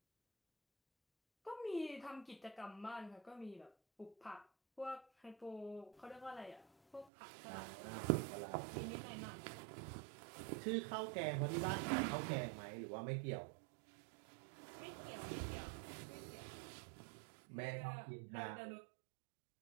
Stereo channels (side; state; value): left; drops out; at 7.1 s